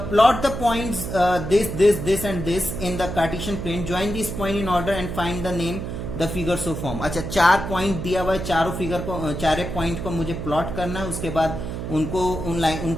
plot the points this and this in the Cartesian plane. Join these point in order and find the name the figure so form. अच्छा, 4 पॉइंट दिया हुआ है, चारे पॉइंट को मुझे प्लॉट करना है, उसके बाद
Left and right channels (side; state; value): right; noise; hum, 6 dB below the sound